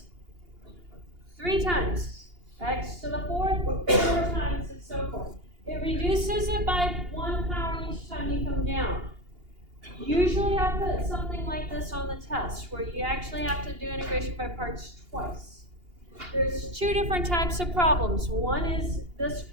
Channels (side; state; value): left; late; 2.8 ms